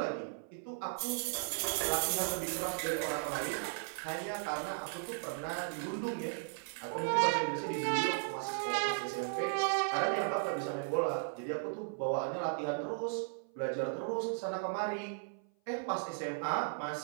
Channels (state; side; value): silent; left; 54 dB below the other